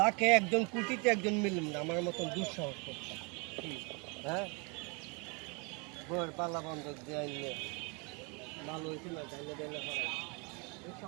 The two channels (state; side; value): quieter; left; 31.6 dB